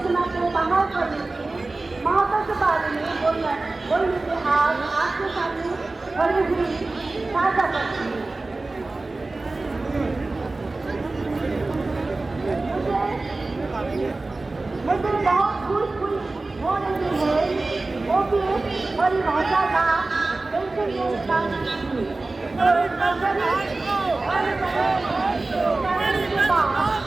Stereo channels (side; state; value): left; quieter; 3.3 dB